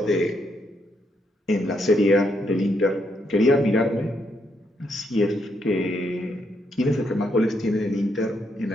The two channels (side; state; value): both; normal; correlation 0.77